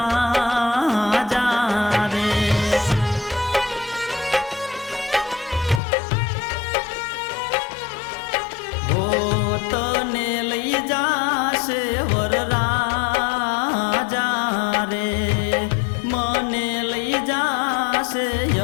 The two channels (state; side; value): drops out; right; at 5.8 s